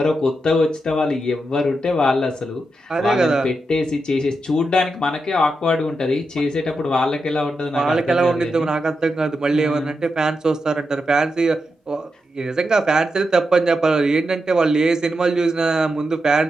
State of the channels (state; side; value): normal; both; correlation 0.86